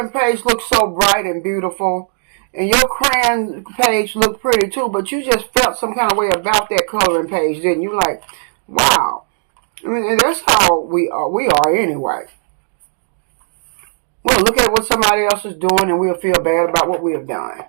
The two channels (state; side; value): silent; left; digital silence